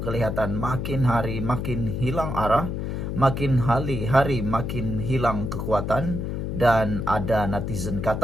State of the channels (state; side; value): noise; left; hum, 3 dB below the sound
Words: kelihatan makin hari makin hilang arah, makin hari makin hilang kekuatan, dan ada netizen